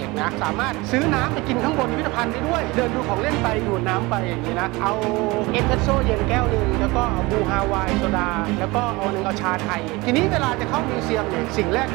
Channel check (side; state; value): left; quieter; 23.1 dB